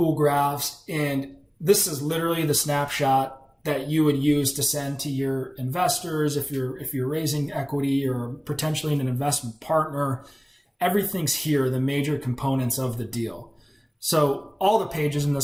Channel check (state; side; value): identical; both; correlation 1.00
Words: graphs, and this is literally the snapshot that you would use to send to your investors if you're raising equity or potentially an investment partner. Everything's here, the major components of the deal. So all the pages in